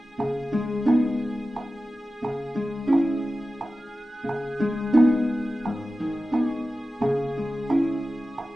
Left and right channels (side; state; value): both; normal; correlation 0.94